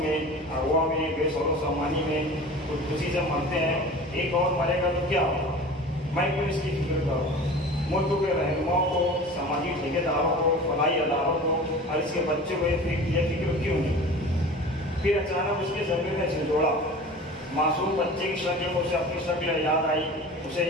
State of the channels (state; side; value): normal; both; correlation 0.38